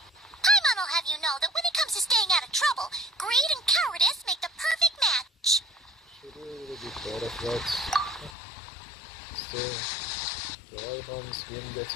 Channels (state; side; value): drops out; right; at 8.3 s